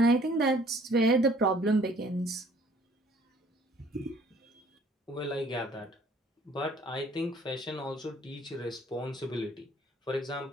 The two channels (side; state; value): both; normal; correlation 0.57